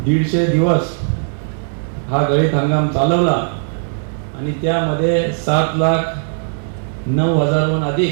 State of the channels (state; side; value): silent; left; 68 dB below the other